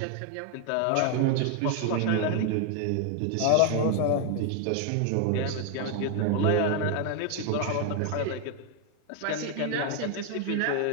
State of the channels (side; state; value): both; different; correlation 0.00